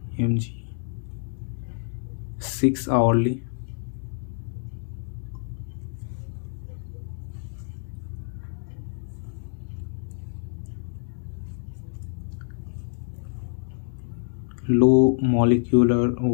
mg 6 hourly, low molecular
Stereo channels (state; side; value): silent; right; 60 dB below the other